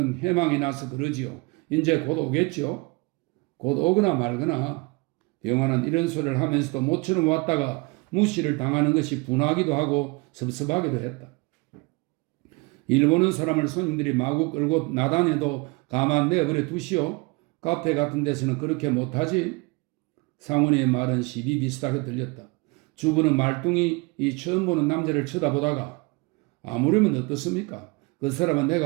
해망이 나서 그러지요. 이제 곧 오겠지요. 곧 오거나 말거나. 병화는 이런 소리를 하면서도 모처럼 왔다가 무시를 당하는 것이 분하기도 하고 섭섭하기도 했다. 일 보는 사람을 손님들이 마구 끌고 나다녀도 가만 내버려 두시오. 카페 같은 데서는 그렇게 못하지. 상훈이의 말은 시비 비슷하게 들렸다. 주부는 말뚱이 이 처음 보는 남자를 쳐다보다가 아무려면 어떻습니까? 그 사람은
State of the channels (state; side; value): quieter; left; 27.1 dB